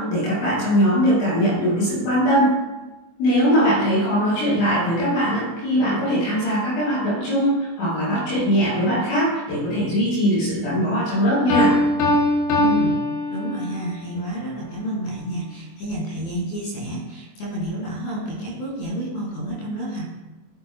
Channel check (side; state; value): right; late; 24 ms